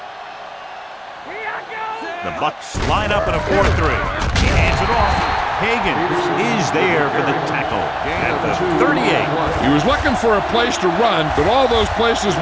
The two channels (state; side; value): identical; both; correlation 1.00